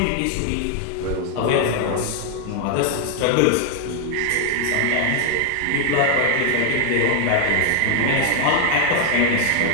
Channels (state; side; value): different; both; correlation 0.00